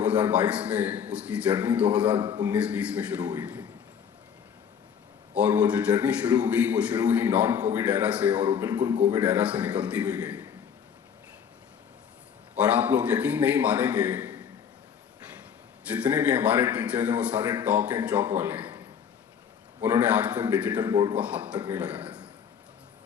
में, उसकी जर्नी 2019-20 में शुरू हुई थी। और वो जो जर्नी शुरू हुई नॉन कोविड एरा से और वो बिल्कुल कोविड एरा से निकलती हुई गई। और आप लोग यकीन नहीं मानेंगे, जितने भी हमारे टीचर्स हैं वो सारे टॉक एंड चॉक वाले हैं। उन्होंने आज तक डिजिटल बोर्ड को हाथ तक नहीं लगाया था।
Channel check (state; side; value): quieter; right; 7.7 dB